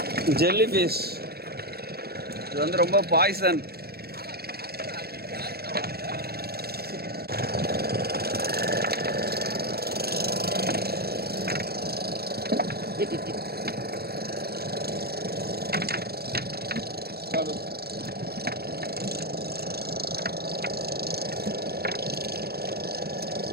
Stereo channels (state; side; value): late; left; 0.46 ms